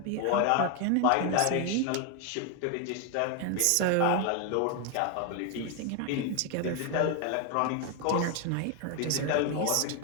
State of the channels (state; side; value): different; both; correlation 0.01